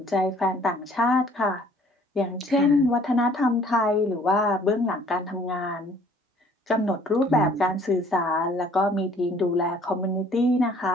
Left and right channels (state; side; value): normal; both; correlation 0.57